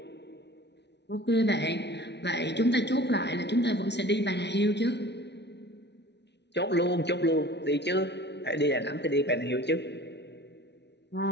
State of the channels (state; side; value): late; right; 0.50 ms